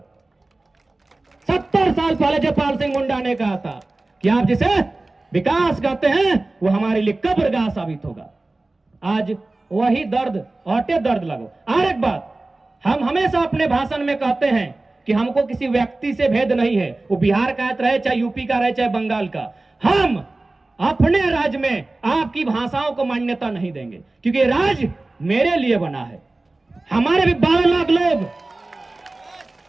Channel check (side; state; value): left; quieter; 3.0 dB